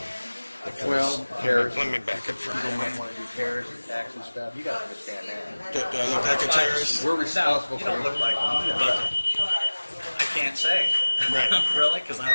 Because Well, Let me back it for you a don't minute. want to do terrorist attacks and stuff. You got to understand that. Do I look like a terrorist? We're responsible you for don't look like one, but I can't say. Right. Really? Because I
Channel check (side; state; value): both; inverted; correlation -1.00